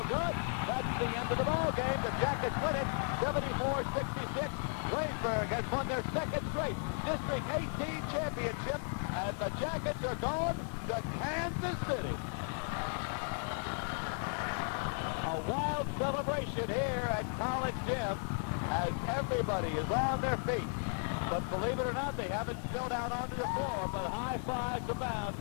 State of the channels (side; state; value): right; silent; 54 dB below the other